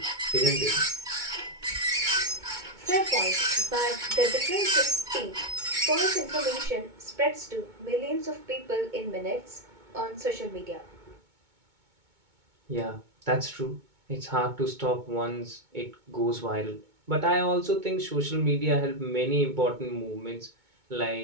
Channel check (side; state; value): left; late; 2.2 ms